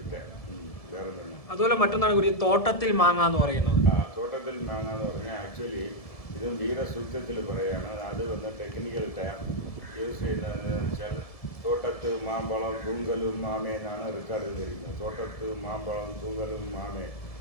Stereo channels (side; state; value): right; late; 1.7 ms